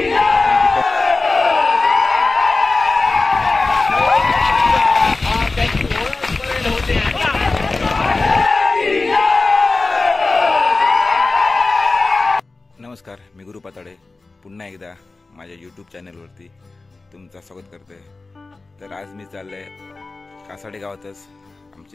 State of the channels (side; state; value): right; quieter; 3.5 dB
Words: नमस्कार, मी गुरु पाताडे पुन्हा एकदा माझ्या यूट्यूब चॅनलवरती तुमचं स्वागत करते। तर आज मी चालले कासाडे गावातच